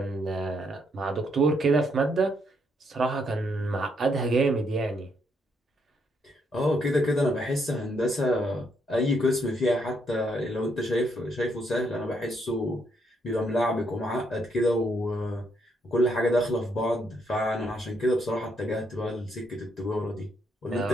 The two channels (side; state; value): both; normal; correlation 0.74